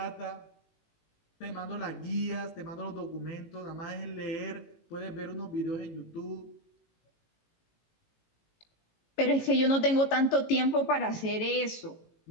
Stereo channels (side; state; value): right; late; 18 ms